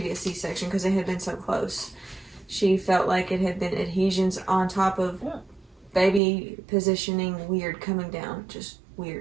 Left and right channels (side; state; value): left; drops out; at 6.2 s